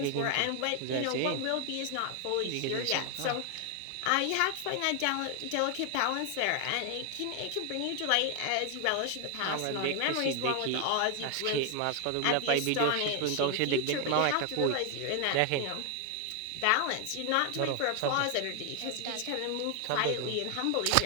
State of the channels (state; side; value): different; both; correlation 0.00